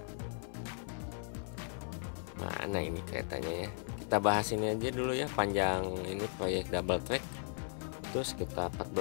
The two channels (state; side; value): silent; right; 53 dB below the other